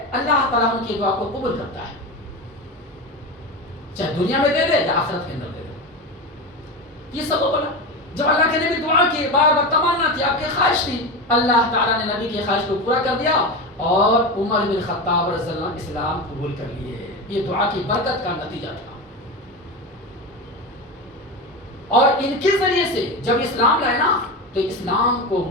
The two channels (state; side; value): normal; both; correlation 0.22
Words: اللہ تعالیٰ ان کی دعا کو قبول کرتا ہے، چاہے دنیا میں دے دے یا آخرت کے اندر دے دے. یہ سب بولا جب اللہ کے نبی دعا کی، بار بار تمنا تھی، آپ کی خواہش تھی، اللہ تعالیٰ نے نبی کی خواہش کو پورا کر دیا اور عمر بن خطاب رضی اللہ عنہ اسلام قبول کر لیے. یہ دعا کی برکت کا نتیجہ تھا. اور ان کے ذریعے سے جب اسلام لائے نا تو اسلام کو،